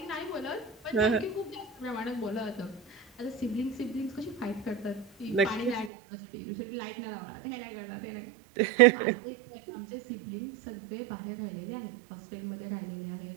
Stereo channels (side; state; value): left; drops out; at 5.9 s